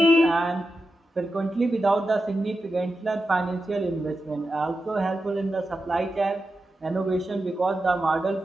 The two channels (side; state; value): both; normal; correlation 0.90